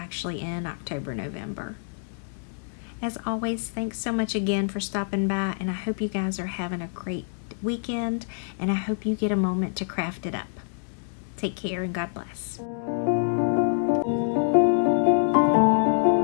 in October, November. As always, thanks so much again for stopping by, and I hope you guys are having a great weekend, and I hope you get a moment to craft it up. Take care and God bless.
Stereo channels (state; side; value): silent; right; digital silence